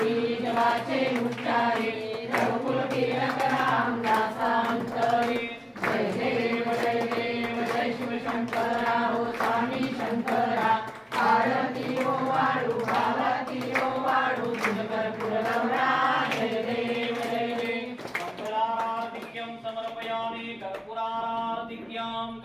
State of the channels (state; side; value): identical; both; correlation 1.00